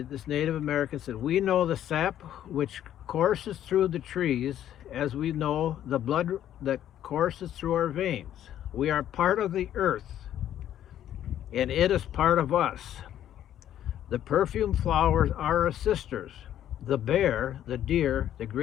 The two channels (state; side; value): quieter; right; 11.2 dB